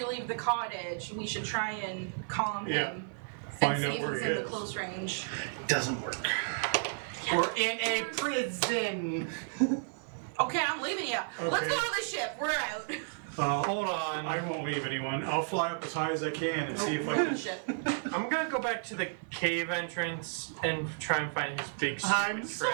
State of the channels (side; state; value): left; silent; 56 dB below the other